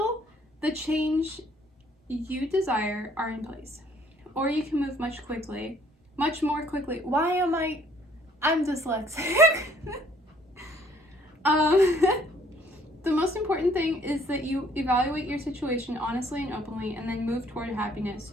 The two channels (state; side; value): normal; both; correlation 0.62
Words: the change you desire are in place. Or you can move much more quickly. I'm dyslexic. The most important thing is that you evaluate your situation honestly and openly and then move toward happiness.